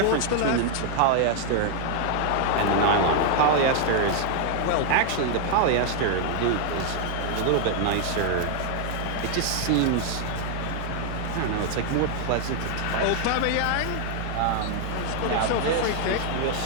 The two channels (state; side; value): different; both; correlation 0.00